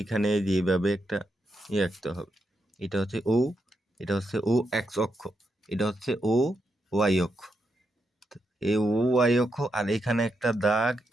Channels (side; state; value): both; normal; correlation 0.83